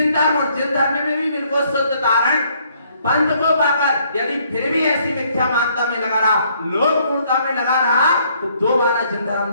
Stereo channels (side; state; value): both; inverted; correlation -0.66